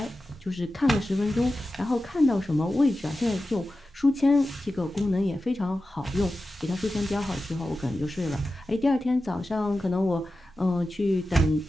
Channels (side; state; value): both; normal; correlation 0.93